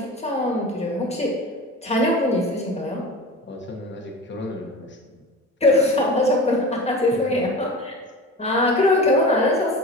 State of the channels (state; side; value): normal; both; correlation 0.33